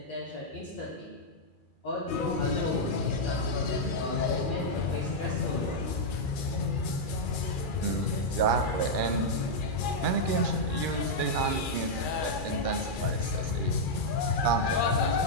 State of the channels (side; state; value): right; late; 2.4 ms